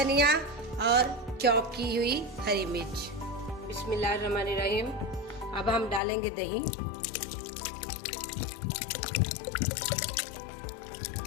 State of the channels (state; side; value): drops out; right; at 6.0 s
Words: और चॉप की हुई हरी मिर्च। बिस्मिल्लाहिर्रहमानिर्रहीम। अब हम डालेंगे दही।